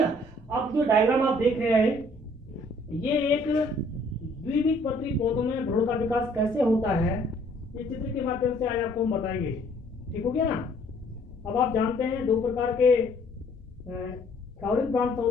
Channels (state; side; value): normal; both; correlation 0.60